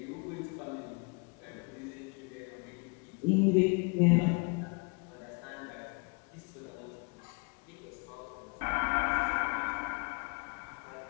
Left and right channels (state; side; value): quieter; right; 32.6 dB